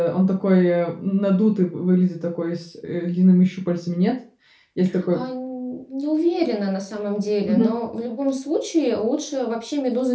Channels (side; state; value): both; identical; correlation 1.00